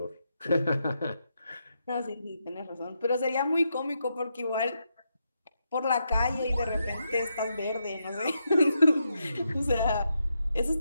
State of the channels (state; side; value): inverted; both; correlation -0.83